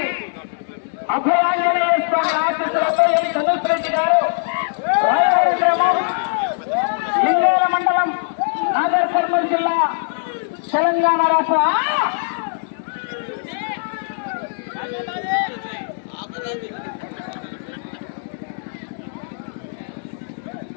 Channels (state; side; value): silent; right; digital silence